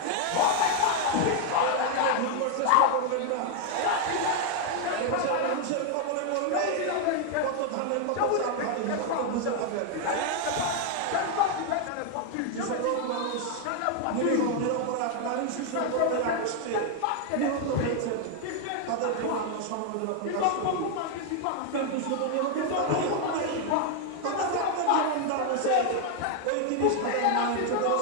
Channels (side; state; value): both; different; correlation 0.00